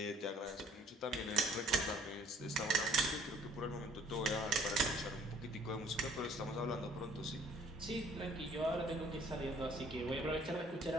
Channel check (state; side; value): normal; both; correlation 0.57